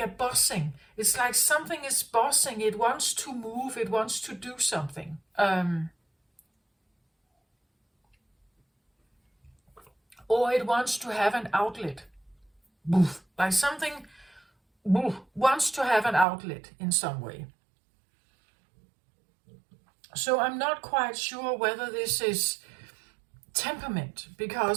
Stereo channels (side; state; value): left; drops out; at 16.2 s